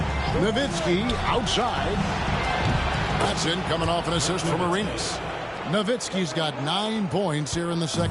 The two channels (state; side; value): identical; both; correlation 1.00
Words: Nowitzki outside. That's in, coming off an assist from Arenas. Nowitzki's got 9 points here in the